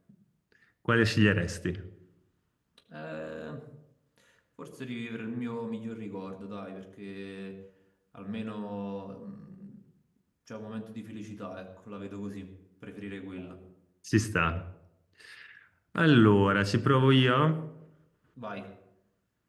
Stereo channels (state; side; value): identical; both; correlation 1.00